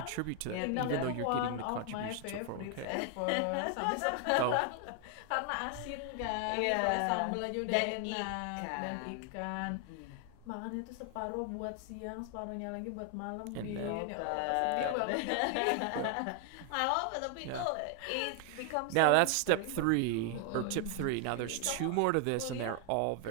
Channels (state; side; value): different; both; correlation 0.00